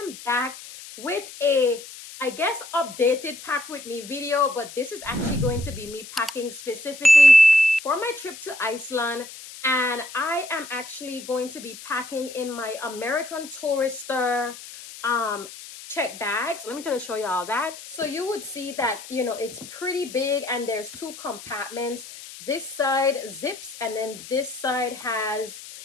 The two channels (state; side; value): noise; left; hiss, 15 dB below the sound